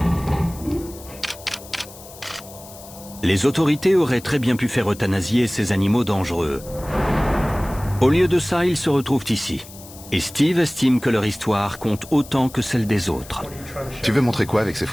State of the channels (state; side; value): noise; left; hiss, 18 dB below the sound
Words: Les autorités auraient très bien pu faire euthanasier ces animaux dangereux. Au lieu de ça, ils se retrouvent ici. Et Steve estime que leur histoire compte autant que celle des autres. Tu veux montrer quoi avec ces